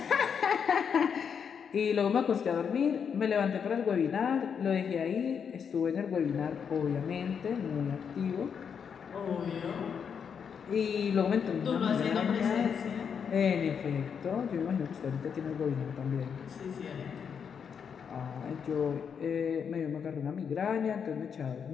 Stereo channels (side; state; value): right; quieter; 7.0 dB